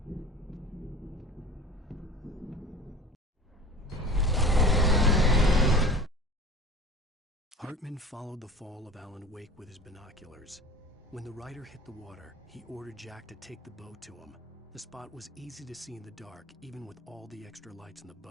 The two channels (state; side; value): normal; both; correlation 0.41